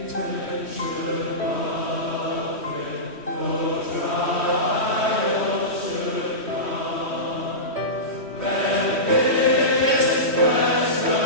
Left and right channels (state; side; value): late; left; 3.1 ms